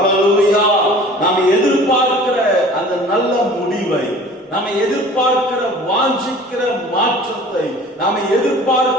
நாம் எதிர்பார்க்கிற அந்த நல்ல முடிவை, நாம் எதிர்பார்க்கிற வாஞ்சிக்கிற மாற்றத்தை, நாம்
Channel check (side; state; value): both; normal; correlation 0.45